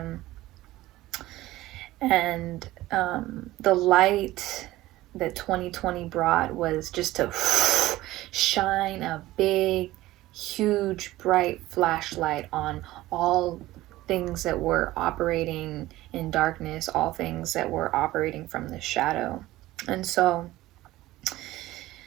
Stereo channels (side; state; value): left; quieter; 16.9 dB